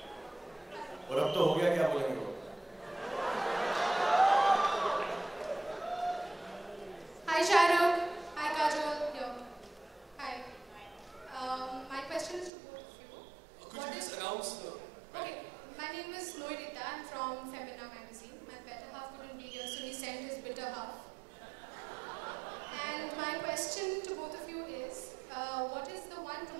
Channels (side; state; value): left; drops out; at 12.5 s